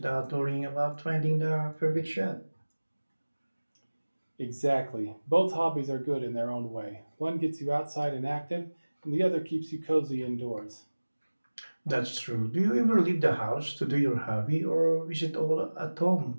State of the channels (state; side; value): inverted; both; correlation -1.00